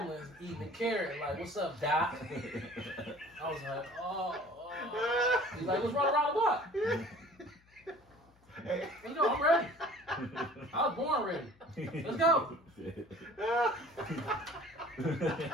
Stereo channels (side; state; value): left; noise; hum, 30 dB below the sound